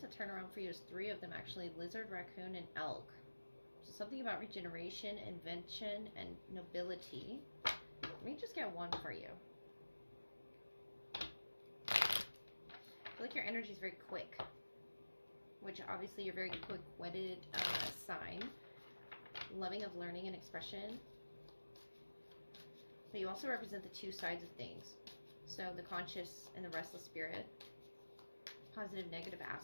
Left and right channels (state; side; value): inverted; both; correlation -1.00